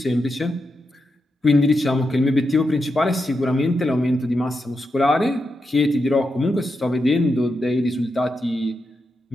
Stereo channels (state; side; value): normal; both; correlation 0.86